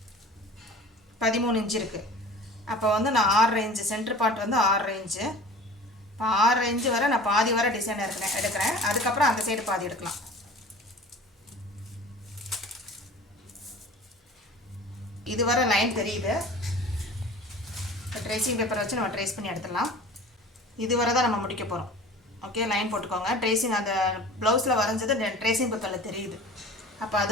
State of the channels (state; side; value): normal; both; correlation 0.41